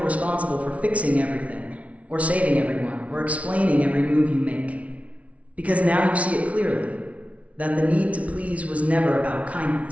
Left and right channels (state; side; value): late; left; 0.065 ms